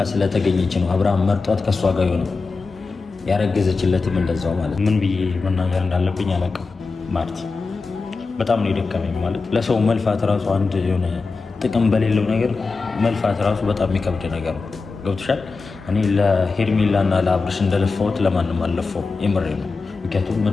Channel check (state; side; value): quieter; right; 4.2 dB